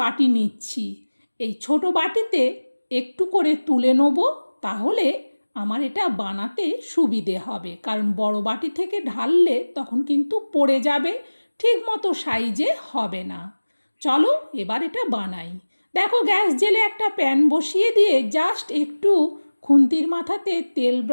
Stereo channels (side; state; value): both; inverted; correlation -1.00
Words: নিচ্ছি। এই ছোট বাটিতে একটু করে তুলে নেব, তাহলে আমার এটা বানাতে সুবিধে হবে। কারণ বড় বাটি থেকে ঢাললে তখন কিন্তু পড়ে যাবে, ঠিক মতো সাইজে হবে না। চলো এবার এটা বানাই। দেখো গ্যাস জেলে একটা প্যান বসিয়ে দিয়ে জাস্ট একটু খুন্তির মাথাতে তেল